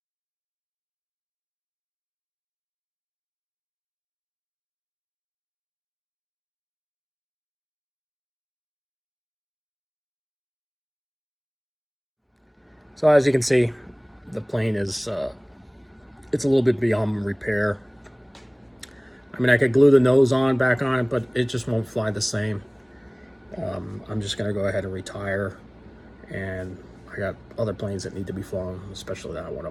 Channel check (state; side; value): identical; both; correlation 1.00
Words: So as you can see, the plane is, it's a little bit beyond repair. I mean, I could glue the nose back on it, but it just won't fly the same. I'm just gonna go ahead and retire, and I got other planes that need to be flown, especially that one